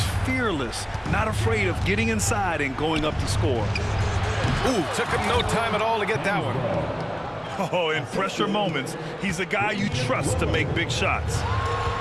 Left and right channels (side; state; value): both; identical; correlation 1.00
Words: fearless, not afraid of getting inside and going up to score. Ooh, took him no time at all to get that one. Oh, in pressure moments, he's a guy you trust to make big shots.